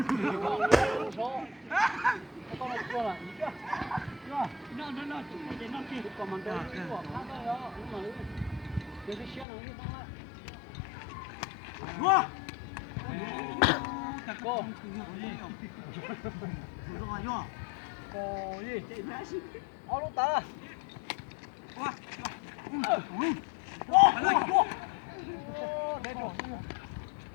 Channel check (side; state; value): right; drops out; at 9.5 s